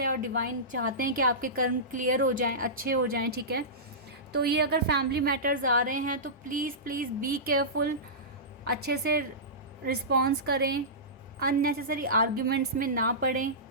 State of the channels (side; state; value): both; normal; correlation -0.18